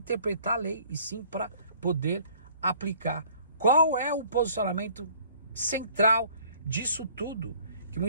a lei, e sim para poder aplicar qual é o posicionamento central disso tudo, que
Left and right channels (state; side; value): inverted; both; correlation -0.55